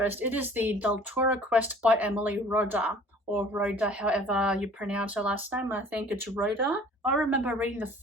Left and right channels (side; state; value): both; normal; correlation 0.50